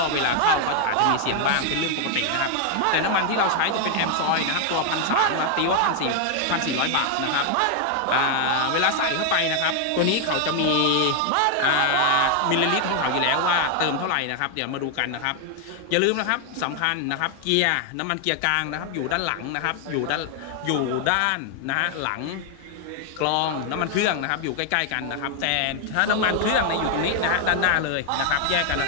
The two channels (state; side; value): different; both; correlation 0.00